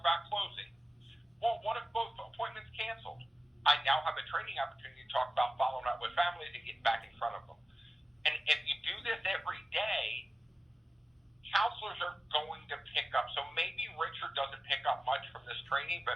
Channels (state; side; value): normal; both; correlation 0.95